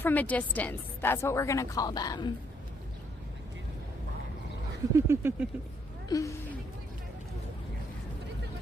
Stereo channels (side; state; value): both; normal; correlation 0.70